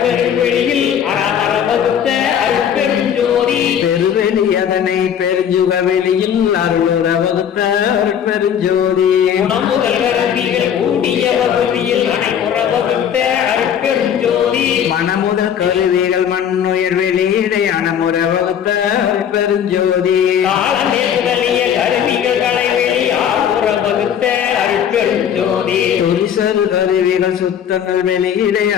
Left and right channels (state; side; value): quieter; right; 8.8 dB